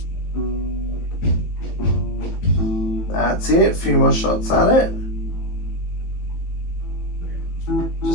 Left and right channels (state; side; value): late; right; 18 ms